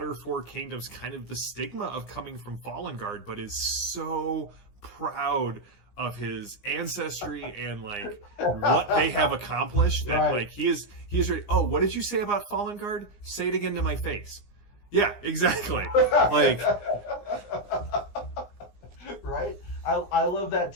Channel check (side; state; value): right; late; 17 ms